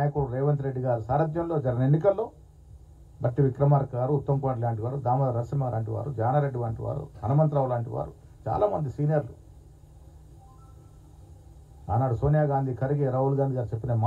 రేవంత్ రెడ్డి గారు సారథ్యంలో జరిగిన ఎన్నికల్లో బట్టి విక్రమార్క గారు, ఉత్తమ్ కుమార్ లాంటి వారు, దామోదర నరసింహ లాంటి వారు, జానారెడ్డి వంటి వారు, హనుమంతరావు లాంటి వారు, చాలామంది సీనియర్లు ఆనాడు సోనియా గాంధీ, ఖర్గే, రాహుల్ గాంధీ గారు చెప్పిన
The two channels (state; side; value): identical; both; correlation 1.00